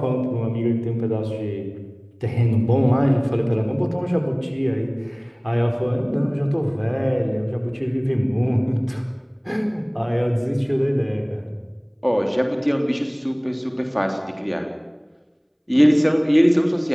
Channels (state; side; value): identical; both; correlation 1.00